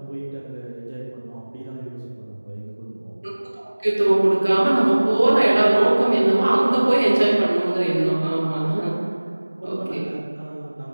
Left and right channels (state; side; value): inverted; both; correlation -1.00